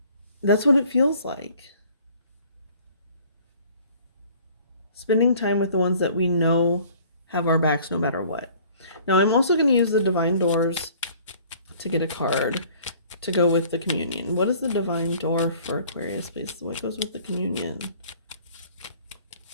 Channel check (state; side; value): inverted; both; correlation -0.53